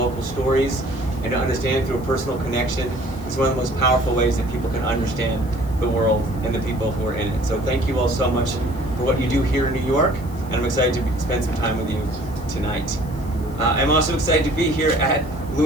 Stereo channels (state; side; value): noise; left; hiss, 24 dB below the sound